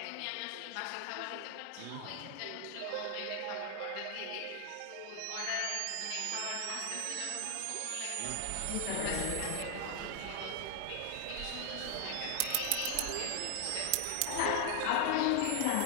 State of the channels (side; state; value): both; different; correlation 0.00